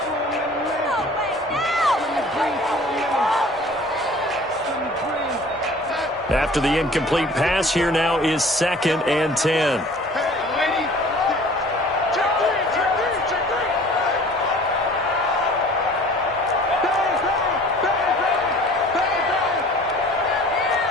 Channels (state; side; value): normal; both; correlation 0.48